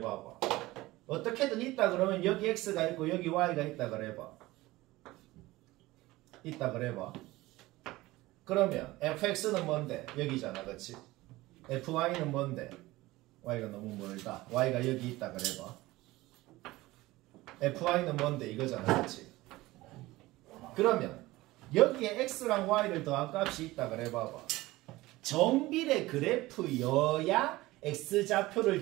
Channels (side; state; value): left; quieter; 18.9 dB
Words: 어떻게든 있다 그러면 여기 x가 있고 여기 y가 있다 그래 봐. 있다 그래 봐. 그러면 fx는 뭔데? 여기잖아, 그치? fy는 뭔데? y가 너무 멀다. y가 여기 있다 그래 봐. fy는 뭔데? 이거잖아, 그치? 그러면 여기에 x랑 y를 더한 값이 있다 그래 봐봐. 정비례 그래프여야